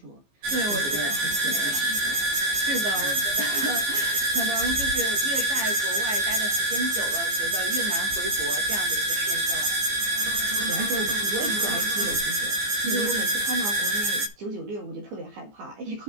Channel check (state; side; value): late; left; 15 ms